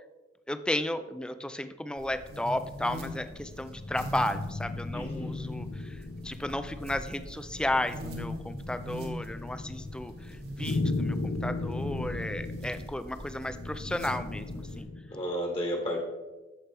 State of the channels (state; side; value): normal; both; correlation 0.81